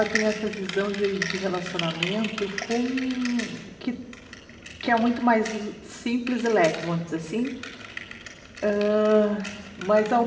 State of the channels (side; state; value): both; identical; correlation 1.00